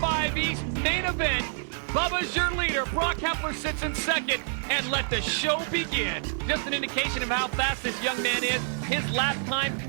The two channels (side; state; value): left; silent; digital silence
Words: East main event. Bubba's your leader. Brock Hepler sits in second, and let the show begin. Just an indication of how fast this young man is. His lap time,